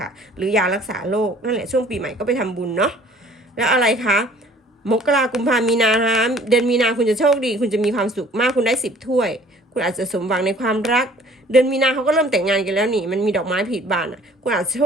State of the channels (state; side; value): normal; both; correlation 0.53